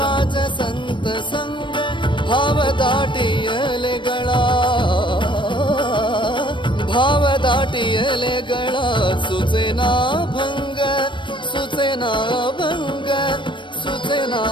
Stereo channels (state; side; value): late; right; 0.23 ms